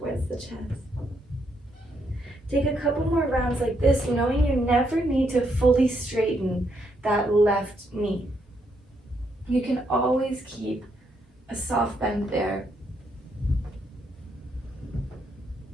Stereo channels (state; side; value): normal; both; correlation 0.76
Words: the chest. Take a couple more rounds like this, knowing you never need to fully straighten that left knee. You can always keep a soft bend there.